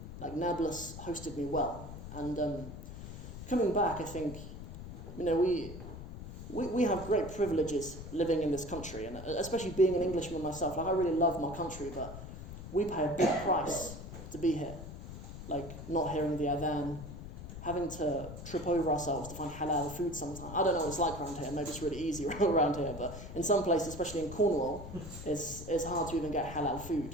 Like, Nablus hosted me well. And coming back, I think, we have great privileges living in this country, and especially being an Englishman myself. Like I really love my country, but we pay a big price to be here. Like not hearing the adhan, having to trip over ourselves to find halal food sometimes. I don't know what it's like around here. Maybe it's really easy around here, but in some places, especially in Cornwall, it's hard to even get halal food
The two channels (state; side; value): noise; left; rumble, 11 dB below the sound